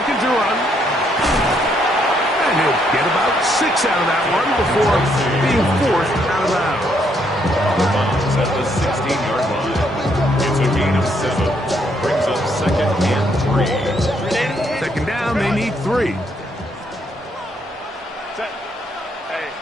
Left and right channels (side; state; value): both; normal; correlation 0.72